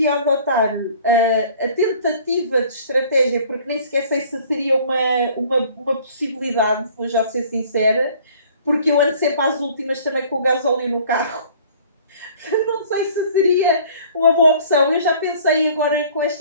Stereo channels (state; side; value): inverted; both; correlation -0.52